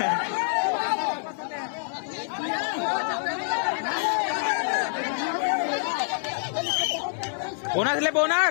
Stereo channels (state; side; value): silent; right; 61 dB below the other